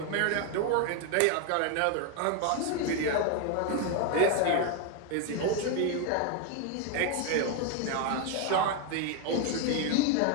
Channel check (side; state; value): both; different; correlation 0.01